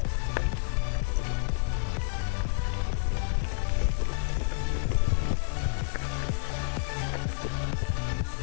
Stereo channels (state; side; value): silent; right; 56 dB below the other